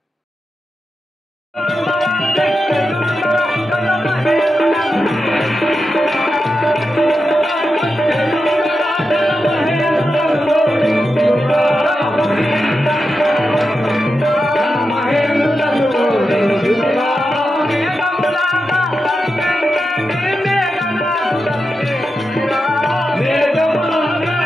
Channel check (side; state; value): both; normal; correlation 0.89